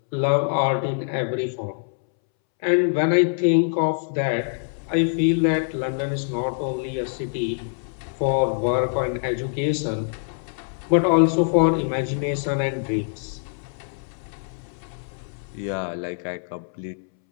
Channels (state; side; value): silent; right; 63 dB below the other